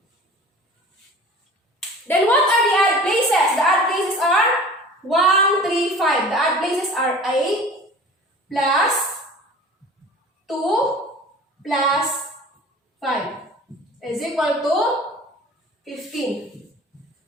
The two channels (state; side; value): normal; both; correlation 0.42